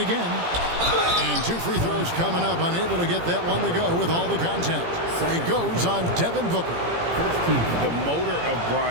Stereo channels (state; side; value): late; left; 17 ms